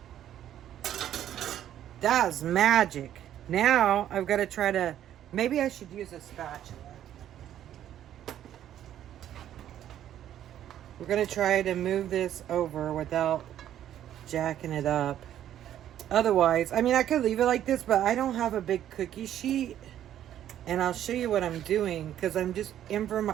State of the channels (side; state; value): left; quieter; 11.2 dB